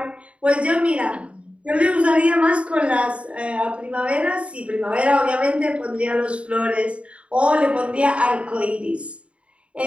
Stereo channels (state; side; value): late; left; 0.061 ms